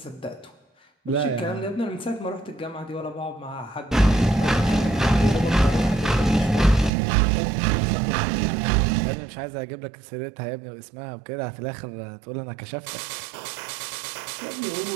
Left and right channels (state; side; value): drops out; left; at 6.9 s